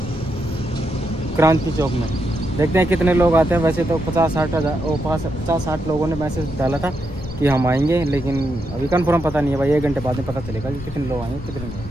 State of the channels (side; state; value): left; noise; rumble, 13 dB below the sound